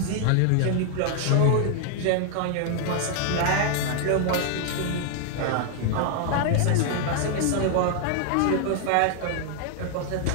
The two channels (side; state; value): both; different; correlation 0.00